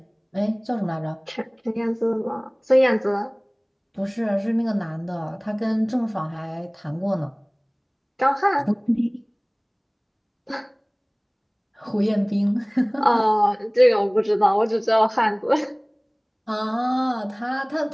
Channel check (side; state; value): both; identical; correlation 1.00